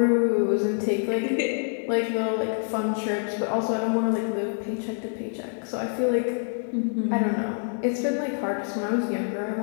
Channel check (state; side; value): silent; right; digital silence